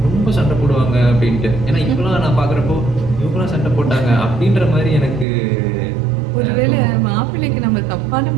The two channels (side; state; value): left; drops out; at 5.2 s